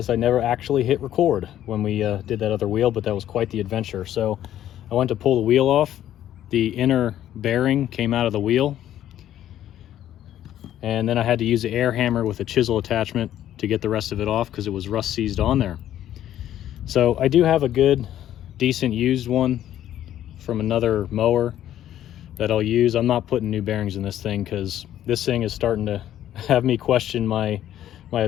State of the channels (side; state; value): right; quieter; 11.8 dB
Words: I never actually hit record when we did that other wheel, but that was quite the adventure. So I went to pull the wheel off. The inner bearing came out of the wheel, and then I had to use the air hammer with a chisel attachment to get the rest of it off because it was rust seized on there. So I do have a good, decent used one from another mower that I'll use. I'm not putting new bearings in this thing because this thing is starting to have me question my